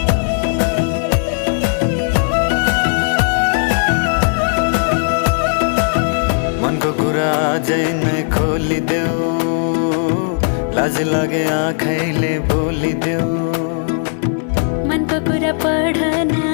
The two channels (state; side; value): silent; right; 57 dB below the other